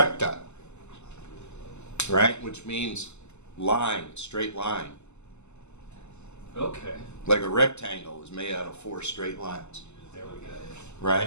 right? Which means line, straight line. Okay, Like a rectangle is made out of 4 straight lines, there we go.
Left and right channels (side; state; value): right; late; 0.82 ms